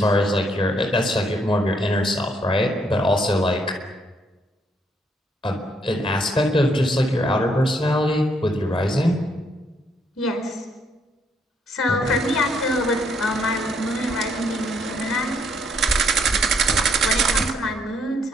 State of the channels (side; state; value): both; normal; correlation 0.71